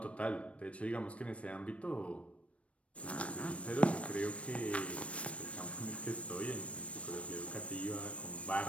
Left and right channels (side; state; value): right; late; 0.063 ms